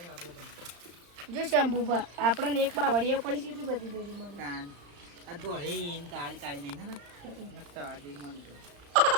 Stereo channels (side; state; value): left; late; 35 ms